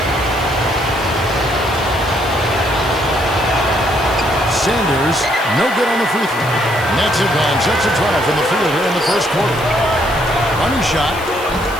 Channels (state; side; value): noise; left; hiss, 17 dB below the sound